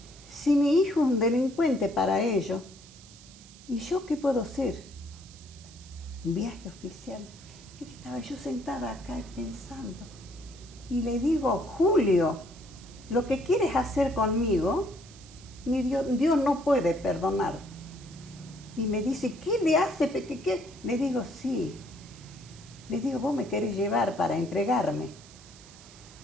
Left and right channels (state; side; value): noise; right; hiss, 21 dB below the sound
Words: Si mi hijo es un delincuente para ellos, ¿y yo qué puedo hacer? Un viaje oficial. Y estaba yo sentada acá pensando. Y le digo, Julio, lo que quieres hacer conmigo, Dios no puede perdonar. Y me dice, ¿qué le hace? ¿Qué? Le digo, sí. Le digo, vos me querés llevar para entregarme.